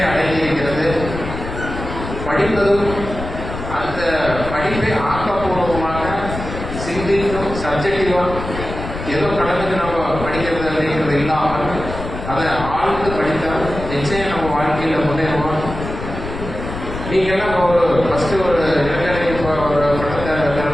அடைந்திருக்கிறது. படிப்பதும் அந்த படிப்பை ஆக்கப்பூர்வமாக சிந்திக்கும் சப்ஜெக்டிவாக ஏதோ கடனுக்கு நம்ம படிக்கிறது அப்படிங்கிறது இல்லாமல் அதை ஆழ்ந்து படித்தால் நிச்சயம் நம்ம வாழ்க்கையில் முன்னேறுவோம். நீங்கள்லாம் ஒரு ஃபஸ்ட்டு ஒரு இளைஞரை இப்போ ஒரு பட்டத்தை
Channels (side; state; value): left; noise; rumble, 8 dB below the sound